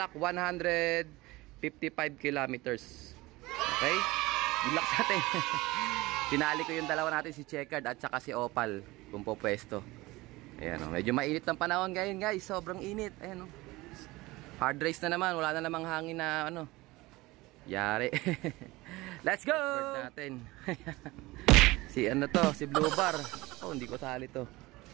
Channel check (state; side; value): quieter; left; 20.6 dB